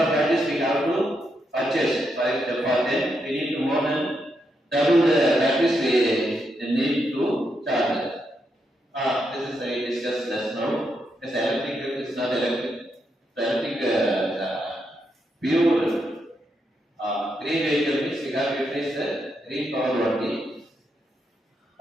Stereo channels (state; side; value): normal; both; correlation 0.81